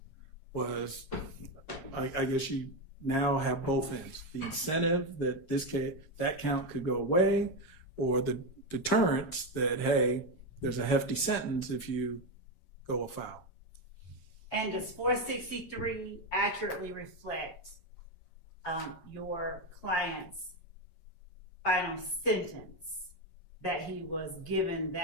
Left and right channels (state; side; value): late; right; 7.4 ms